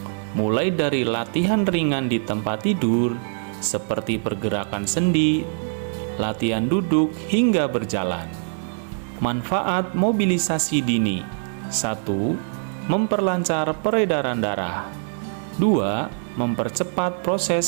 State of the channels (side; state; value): left; silent; digital silence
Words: mulai dari latihan ringan di tempat tidur seperti pergerakan sendi, latihan duduk hingga berjalan. Manfaat mobilisasi dini: 1. Memperlancar peredaran darah. 2. Mempercepat